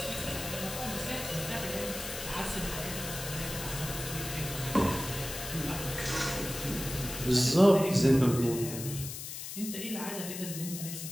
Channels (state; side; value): noise; left; hiss, 8 dB below the sound